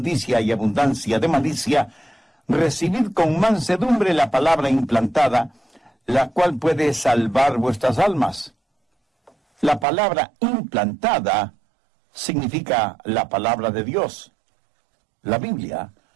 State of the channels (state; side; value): drops out; left; at 9.9 s